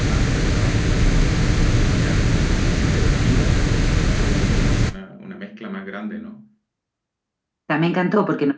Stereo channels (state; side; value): identical; both; correlation 1.00